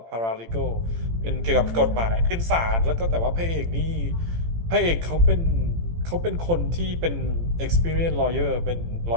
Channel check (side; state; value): left; late; 18 ms